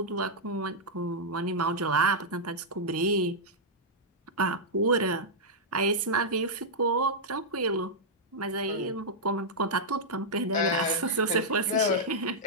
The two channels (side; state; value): both; normal; correlation -0.08